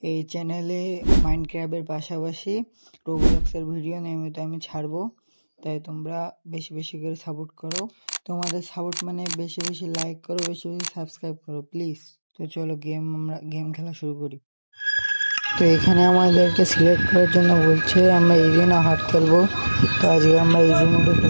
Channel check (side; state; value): both; inverted; correlation -1.00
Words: এই চ্যানেলে মাইনক্রাফটের পাশাপাশি রোবলক্সের ভিডিও নিয়মিত আমি ছাড়বো, তাই তোমরা বেশি বেশি করে সাপোর্ট করো। তোমাদের সাপোর্ট মানে বেশি বেশি লাইক করো, বেশি বেশি সাবস্ক্রাইব করো প্লিজ। তো চলো আমরা গেম খেলা শুরু করি। তো এখানে আমাদেরকে সিলেক্ট করার জন্য বলছে আমরা ইজি না হার্ড খেলবো। তো আজকে আমরা ইজি মোডে